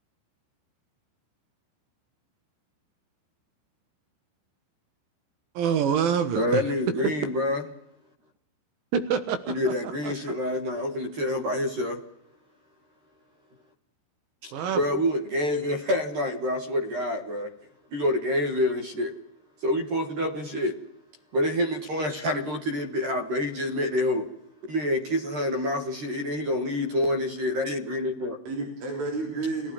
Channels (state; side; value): late; left; 13 ms